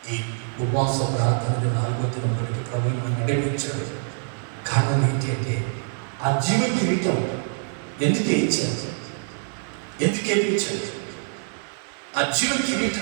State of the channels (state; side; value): silent; left; 57 dB below the other